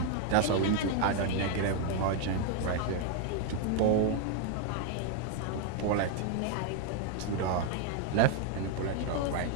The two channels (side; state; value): both; different; correlation 0.00